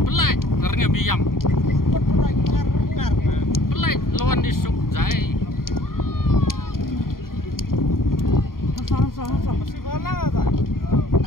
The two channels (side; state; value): right; late; 0.92 ms